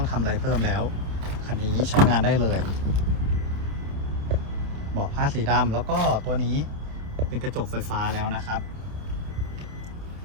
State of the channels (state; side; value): late; left; 28 ms